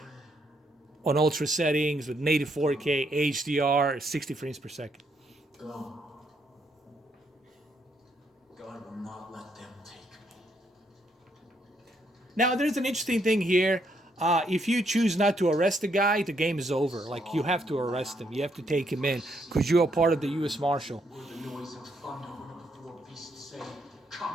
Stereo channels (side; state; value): both; normal; correlation 0.74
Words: on ultra settings with native 4K, HDR, 60 frames per second. Go. God will not let them take me. Now, there's an interesting thing here. If you choose not to arrest the guy, the game is over. Like, you have to arrest him. You have to take him in because you are part of the U.S. Marshal. Where the noise of thunder when the four beasts say,